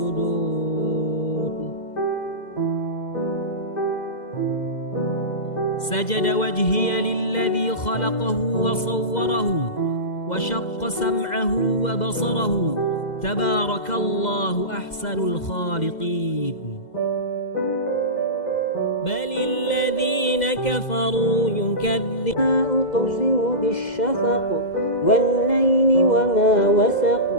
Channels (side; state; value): right; late; 2.0 ms